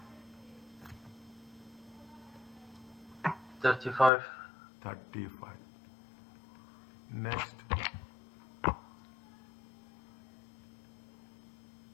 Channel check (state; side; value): drops out; right; at 4.1 s